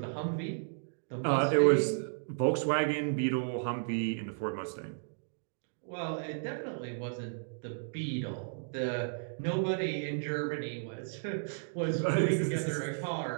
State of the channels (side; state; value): left; silent; digital silence